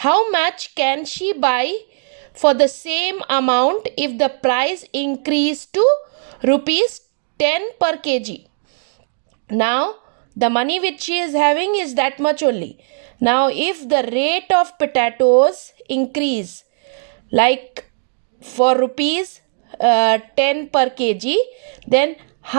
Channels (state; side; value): silent; left; digital silence